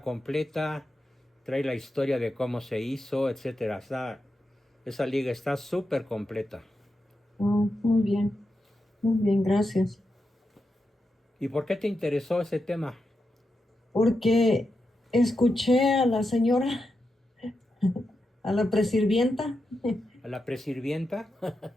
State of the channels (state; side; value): normal; both; correlation 0.88